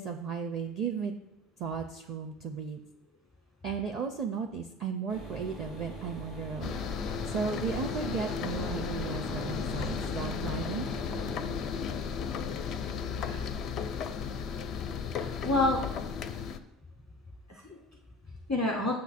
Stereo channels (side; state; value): both; normal; correlation 0.38